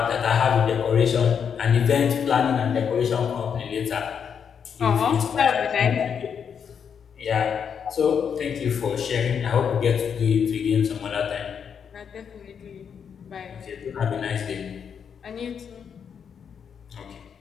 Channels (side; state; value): right; quieter; 7.2 dB